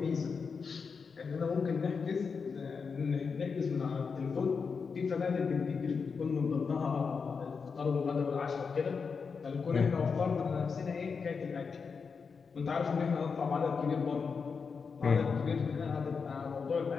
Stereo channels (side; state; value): right; quieter; 5.4 dB